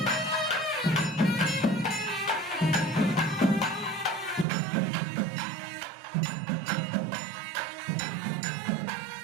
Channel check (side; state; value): left; drops out; at 4.5 s